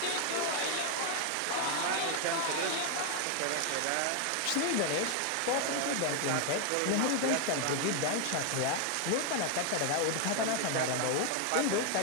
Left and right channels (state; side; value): different; both; correlation 0.00